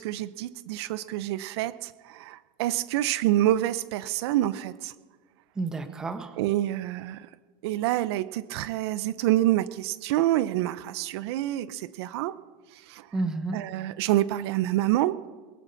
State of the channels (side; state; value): left; quieter; 12.5 dB